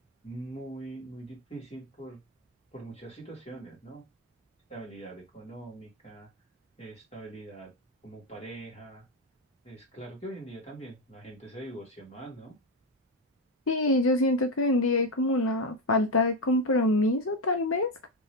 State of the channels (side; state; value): both; normal; correlation 0.10